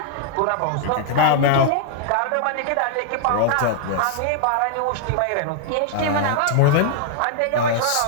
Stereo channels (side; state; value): both; different; correlation 0.00